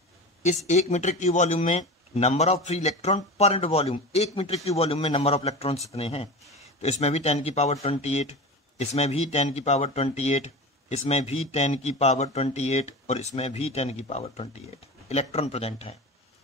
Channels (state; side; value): normal; both; correlation 0.29